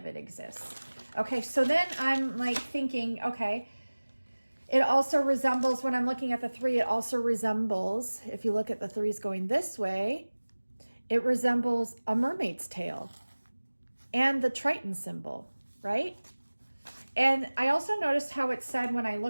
it exists. Okay, so then I'm like thinking, okay, it also resembles, when I'm looking at the 3, it also resembles, if you look at the 3s going this way, it resembles a mermaid's tail and the Triton symbol, right? And I also noticed how it said, when I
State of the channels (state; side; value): inverted; both; correlation -1.00